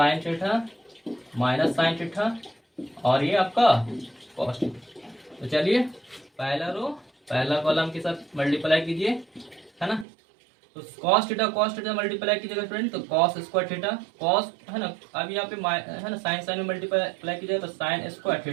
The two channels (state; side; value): drops out; left; at 10.1 s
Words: theta minus sine theta और ये आपका कॉस थीटा। तो चलिए पहला रो पहला कॉलम के साथ मल्टीप्लाई कीजिए है ना। तो कॉस थीटा मल्टीप्लाई कीजिएगा स्टूडेंट, तो कॉस स्क्वायर थीटा कॉस है ना, अब यहाँ पे है ना साइन साइन में मल्टीप्लाई कीजिएगा तो sine square